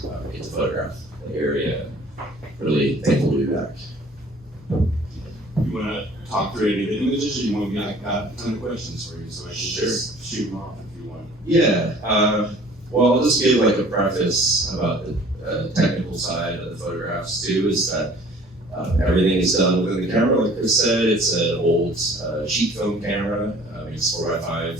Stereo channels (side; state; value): both; normal; correlation 0.52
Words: get to photograph the area. Really thankful to be back. You want to talk through any of the images, or you want me to got a ton of questions for you, so I can just shoot them off if you want? Yeah. Well, I'll just give like a preface about the technical side of the photographs too, is that everything is done within the camera. Like Chris said, it's an old sheet film camera. It's